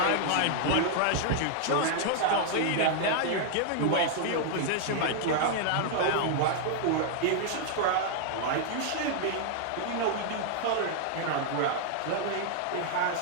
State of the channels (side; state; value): both; different; correlation -0.01